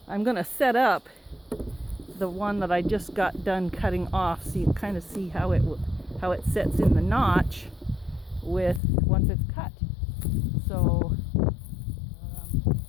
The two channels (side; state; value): right; drops out; at 8.8 s